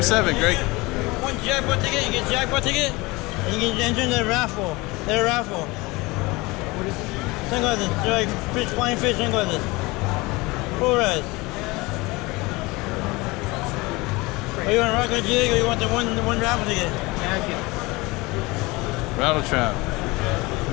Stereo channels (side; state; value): right; quieter; 23.2 dB